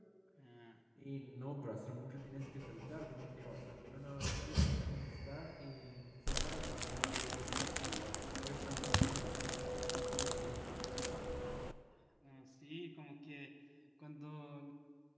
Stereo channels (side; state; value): both; identical; correlation 1.00